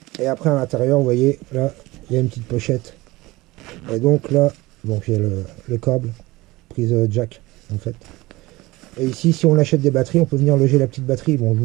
Et après à l'intérieur, vous voyez, là, il y a une petite pochette. Et donc là, donc il y a le câble, prise jack en fait. Et ici, si on achète des batteries, on peut venir loger la petite batterie. Bon, je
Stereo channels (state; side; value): quieter; left; 20.4 dB